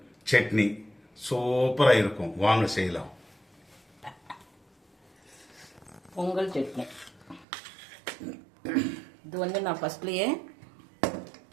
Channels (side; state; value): left; drops out; at 7.5 s